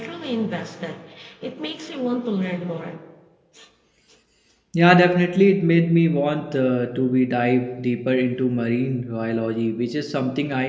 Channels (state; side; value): identical; both; correlation 1.00